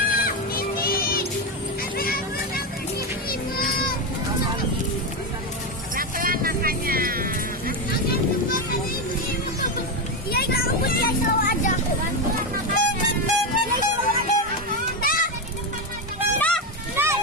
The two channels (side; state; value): both; normal; correlation 0.11